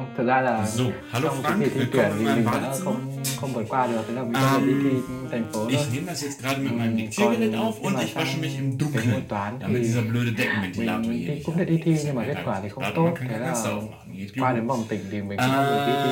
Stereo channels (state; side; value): identical; both; correlation 1.00